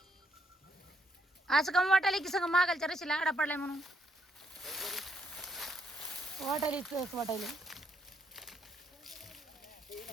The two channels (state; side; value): normal; both; correlation 0.73